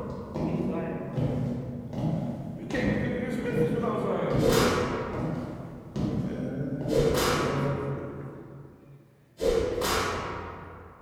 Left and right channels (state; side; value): identical; both; correlation 1.00